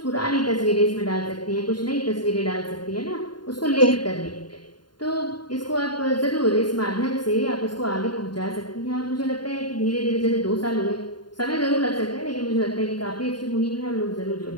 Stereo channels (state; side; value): late; right; 0.71 ms